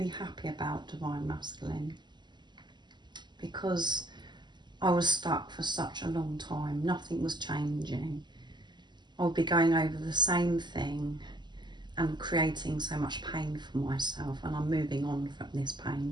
happy about, Divine Masculine, because I was stuck for such a long time. Nothing was changing. I would be going over the same thing and creating so much pain for myself, and I'm moving on from this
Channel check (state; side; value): late; left; 0.21 ms